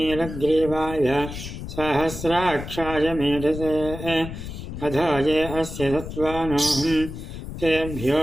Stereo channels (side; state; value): left; noise; rumble, 9 dB below the sound